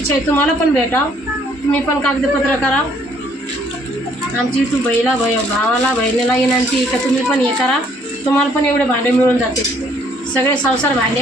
आहे तुम्हाला पण भेटा. तुम्ही पण कागदपत्र करा. आमची तू भावाला बहिणीला विनंती आहे का तुम्ही पण हे करा. तुम्हाला पण एवढे भांडे मिळून जाते. सगळे संसार भांडे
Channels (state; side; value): normal; both; correlation 0.64